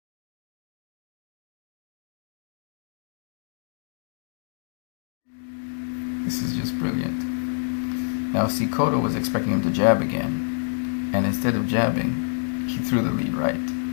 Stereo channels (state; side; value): silent; right; digital silence